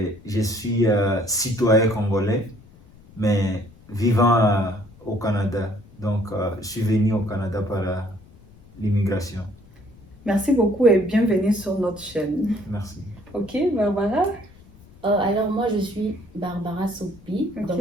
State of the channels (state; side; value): noise; left; rumble, 25 dB below the sound